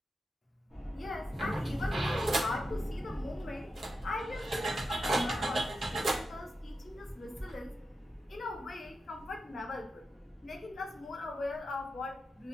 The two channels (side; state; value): both; normal; correlation 0.90